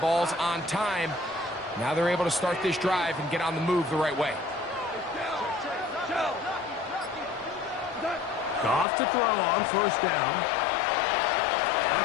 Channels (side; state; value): right; drops out; at 8.8 s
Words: ball's on time. Now they're able to start this drive and get on the move the right way. Goff to throw on first down.